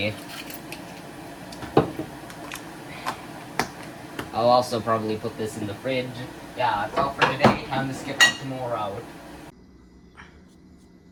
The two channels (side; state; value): both; identical; correlation 1.00